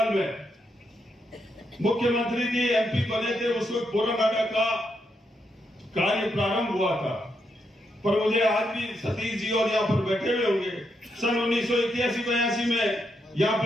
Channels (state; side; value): normal; both; correlation 0.81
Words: में, मुख्यमंत्री जी एमपी बने थे, उस वक्त पोरानाडा का कार्य प्रारंभ हुआ था, पर मुझे आज भी सतीश जी और यहाँ पर बैठे हुए होंगे, सन 1981-82 में यहाँ